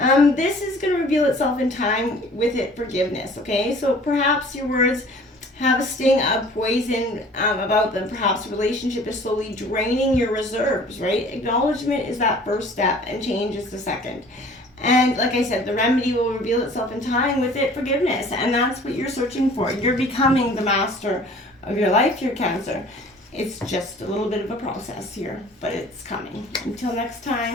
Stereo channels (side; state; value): both; normal; correlation 0.49